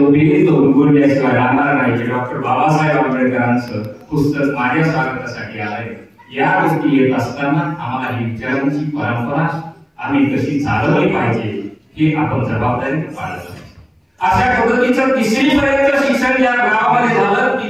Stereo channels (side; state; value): both; identical; correlation 1.00